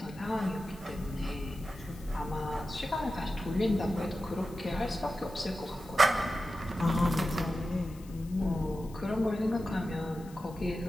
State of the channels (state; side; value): noise; left; hiss, 23 dB below the sound